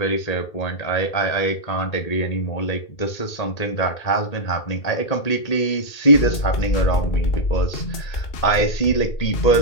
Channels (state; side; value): late; right; 1.8 ms